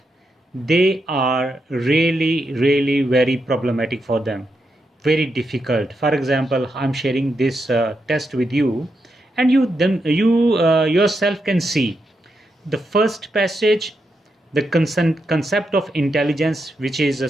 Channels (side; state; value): both; normal; correlation 0.84